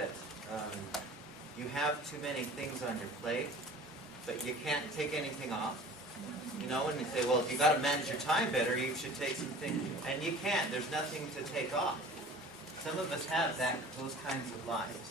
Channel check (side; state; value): both; normal; correlation 0.43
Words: you have too many things on your plate, but you can't take anything off? You know, and you say, well, if you got to manage your time better, you should take some things, and you can't. There's nothing to take off. Some of us have those kinds of